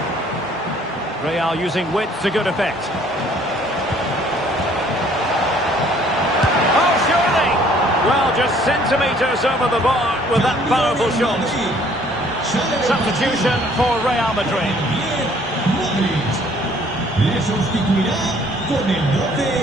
Real using width to good effect. Oh, surely! Well, just centimetres over the bar with that powerful shot. Substitution for Real Madrid.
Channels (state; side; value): normal; both; correlation 0.59